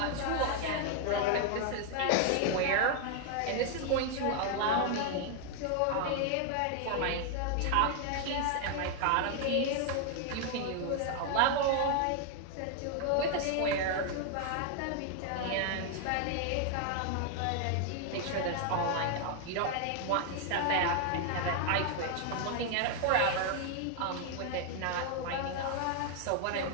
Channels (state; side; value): different; both; correlation 0.00